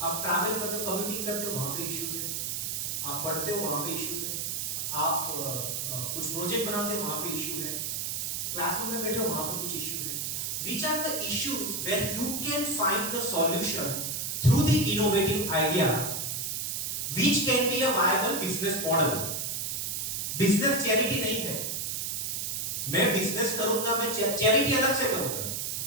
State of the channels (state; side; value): noise; right; hiss, 2 dB below the sound